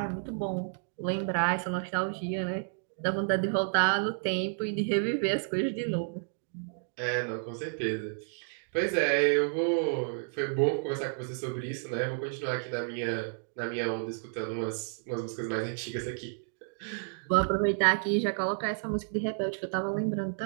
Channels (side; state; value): left; silent; digital silence